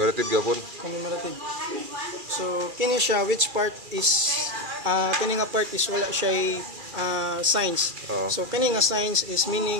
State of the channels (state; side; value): late; left; 2.4 ms